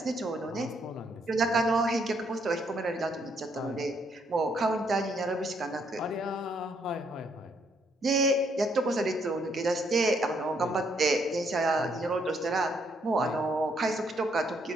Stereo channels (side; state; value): both; normal; correlation 0.71